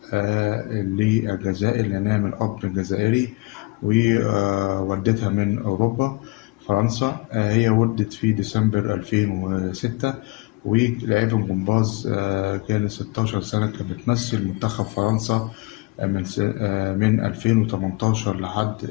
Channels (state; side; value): quieter; right; 24.4 dB